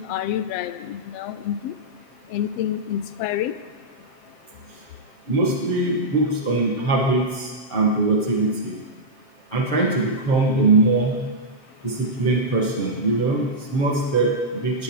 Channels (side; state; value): right; late; 7.6 ms